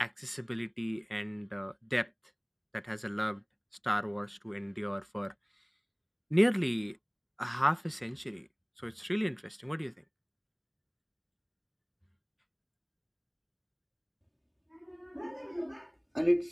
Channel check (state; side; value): identical; both; correlation 1.00